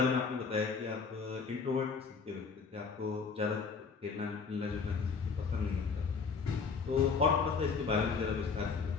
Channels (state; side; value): quieter; right; 5.2 dB